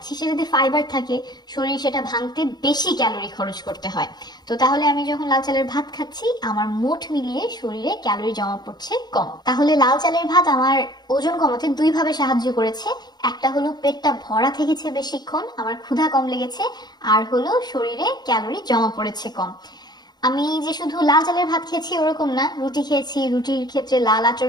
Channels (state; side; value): late; right; 0.20 ms